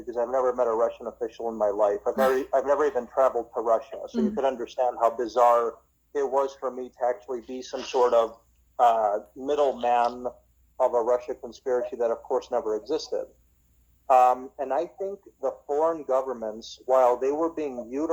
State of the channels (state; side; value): identical; both; correlation 1.00